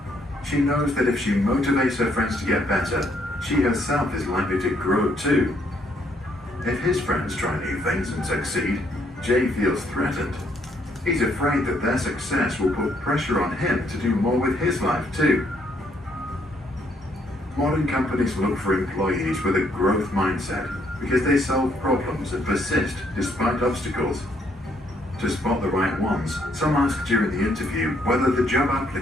She knows that if she motivates her friends to get better, she herself is likely to grow too. If his friends try new things and succeed, Jay feels threatened. He's afraid that their success will put pressure on him to do more with his life too. Modern companies look for employees with a growth mindset because they solve problems and persist despite obstacles. To spot the right ones, some ask during the interview whether the job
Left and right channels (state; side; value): normal; both; correlation 0.70